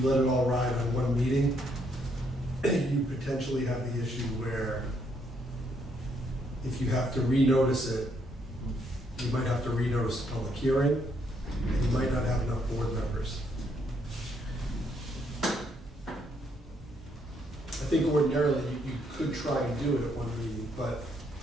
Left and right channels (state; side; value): normal; both; correlation 0.72